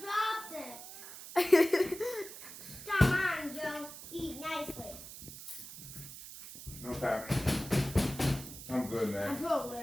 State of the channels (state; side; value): noise; right; hiss, 13 dB below the sound